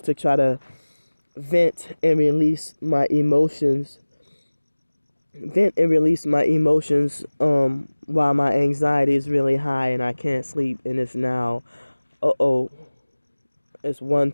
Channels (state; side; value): inverted; both; correlation -1.00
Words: to try to vent and release my emotions while my anxiety is really high and I can't sleep, and it's now it's